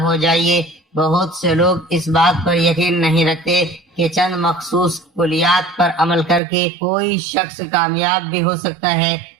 ہو جائیے۔ بہت سے لوگ اس بات پر یقین نہیں رکھتے کہ چند مخصوص کلیات پر عمل کر کے کوئی شخص کامیاب بھی ہو سکتا ہے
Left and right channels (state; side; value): drops out; left; at 6.4 s